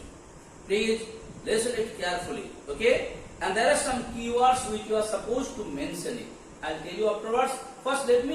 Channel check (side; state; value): both; identical; correlation 1.00